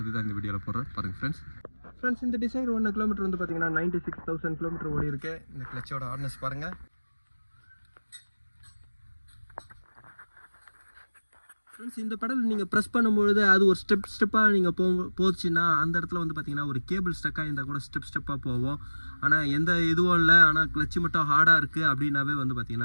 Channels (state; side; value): inverted; both; correlation -1.00